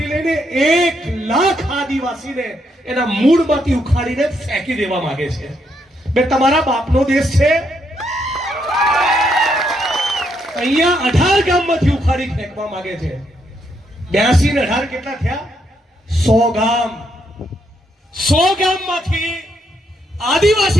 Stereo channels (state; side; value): normal; both; correlation 0.76